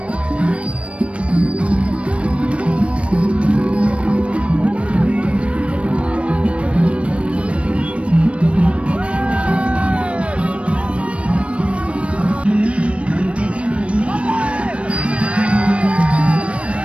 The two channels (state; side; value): late; left; 0.061 ms